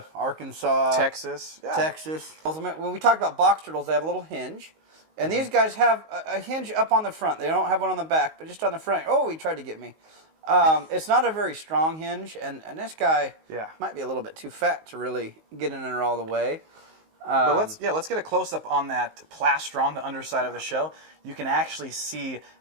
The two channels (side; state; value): left; late; 19 ms